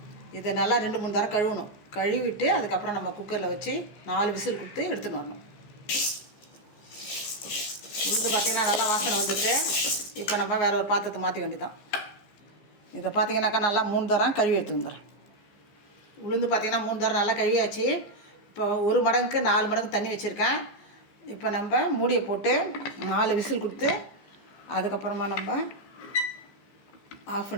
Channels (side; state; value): right; late; 15 ms